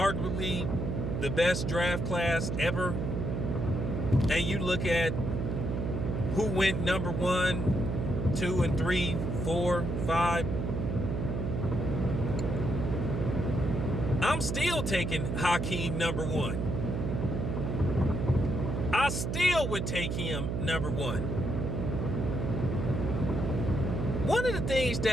the best draft class ever, and you look at who went number 1, 2, and 3, 4, 5, I'm still taking Hakeem number 1. I still would take him number 1. One of the things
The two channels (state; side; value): noise; right; hum, 1 dB below the sound